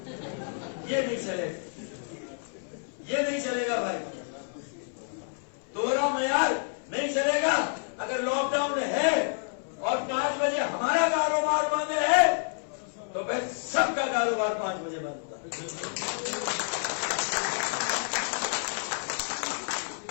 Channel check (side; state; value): right; silent; 58 dB below the other